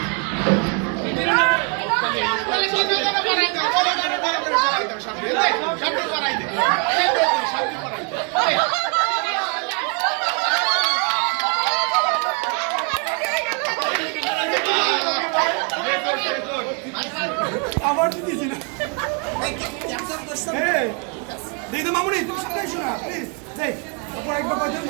আবার দিয়েছি না দিদি তো মামুনি তুমি সামনে এসো না প্লিজ যাই উপর একবার কয়জন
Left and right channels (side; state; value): left; quieter; 36.1 dB